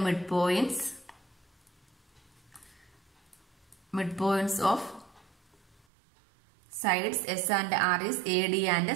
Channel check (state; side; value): drops out; left; at 5.8 s